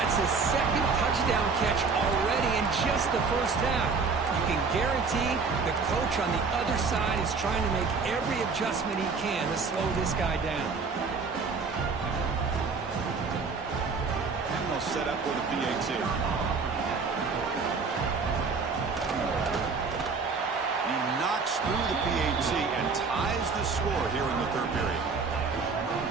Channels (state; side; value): quieter; left; 4.8 dB